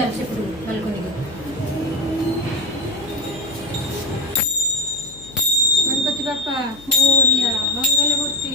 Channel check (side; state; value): left; noise; hum, 21 dB below the sound